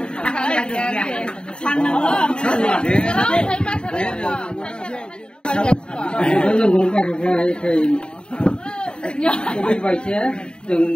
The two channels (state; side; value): late; right; 0.050 ms